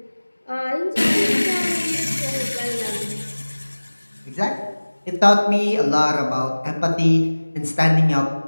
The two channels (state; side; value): inverted; both; correlation -1.00